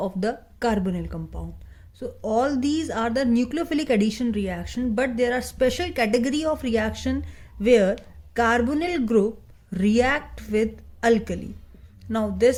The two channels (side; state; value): both; identical; correlation 1.00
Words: the carbonyl compound. So all these are the nucleophilic addition reaction, but there are special category of reaction where carbonyl group react with alkali. Now